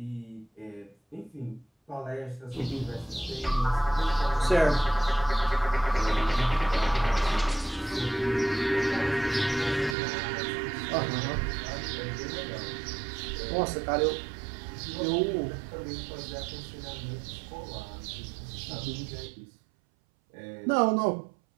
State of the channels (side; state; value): left; drops out; at 10.0 s